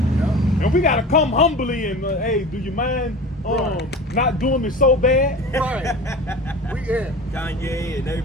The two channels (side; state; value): both; normal; correlation 0.35